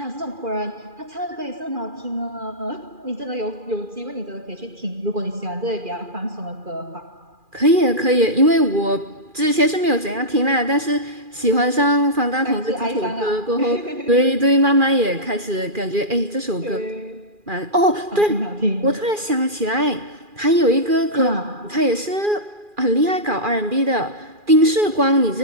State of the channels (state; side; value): late; left; 2.4 ms